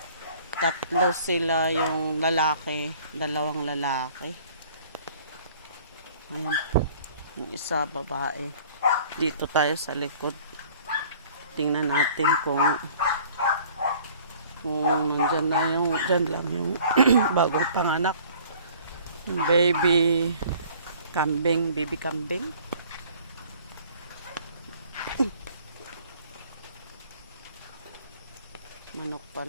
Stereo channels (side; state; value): both; inverted; correlation -0.52